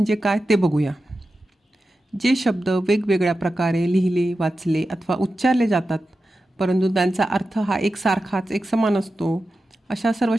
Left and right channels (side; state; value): both; normal; correlation 0.92